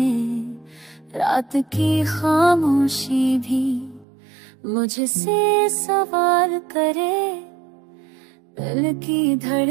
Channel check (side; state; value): left; drops out; at 4.0 s